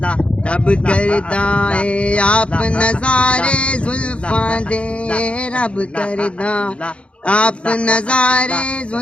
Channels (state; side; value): late; right; 0.060 ms